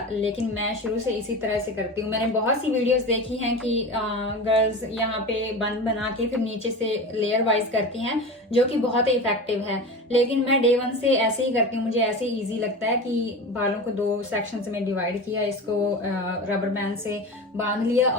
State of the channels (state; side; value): normal; both; correlation 0.29